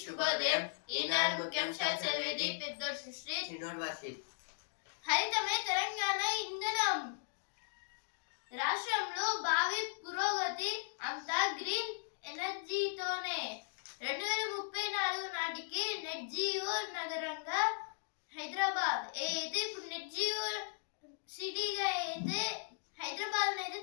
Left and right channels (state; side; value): silent; right; digital silence